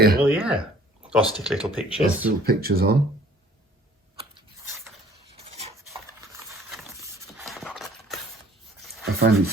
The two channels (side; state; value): both; normal; correlation 0.55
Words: you? Well, yeah. Or stick little pictures. Stick little pictures on. I find